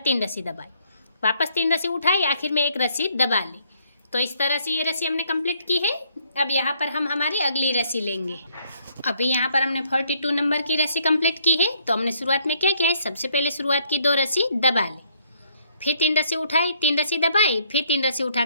रस्सी दबाई, वापस 3 रस्सी उठाई, आखिर में 1 रस्सी दबा ली। तो इस तरह से ये रस्सी हमने कंप्लीट की है। अब यहाँ पर हम हमारी अगली रस्सी लेंगे। अभी यहाँ पर हमने 42 नंबर की रस्सी कंप्लीट की है। तो हमने शुरुआत में क्या किया है, सबसे पहले शुरुआत की 2 रस्सी दबा ली, फिर 3 रस्सी उठाई, 3 रस्सी दबाई, फिर 3 रस्सी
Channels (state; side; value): inverted; both; correlation -0.67